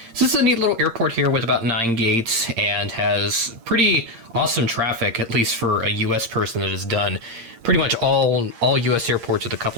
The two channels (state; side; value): late; left; 8.7 ms